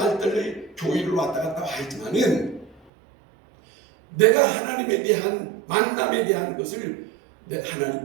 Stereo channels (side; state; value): left; drops out; at 2.8 s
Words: 교회를 왔다 갔다 하지만은 내가 하나님에 대한 만남에 대한 것을